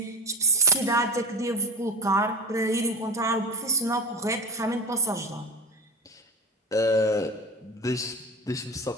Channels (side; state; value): both; normal; correlation 0.25